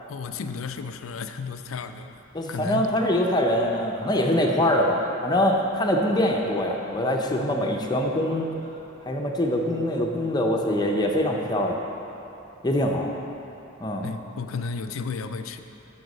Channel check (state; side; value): normal; both; correlation 0.38